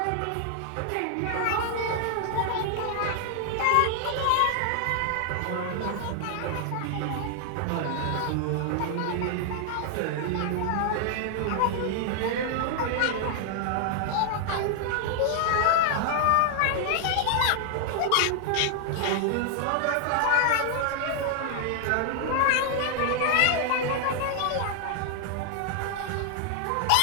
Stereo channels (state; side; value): different; both; correlation 0.00